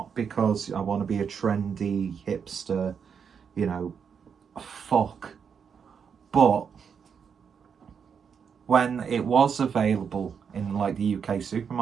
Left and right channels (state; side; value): quieter; left; 6.8 dB